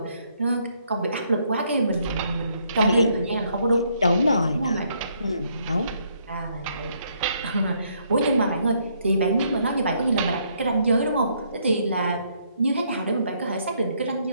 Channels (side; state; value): both; inverted; correlation -0.71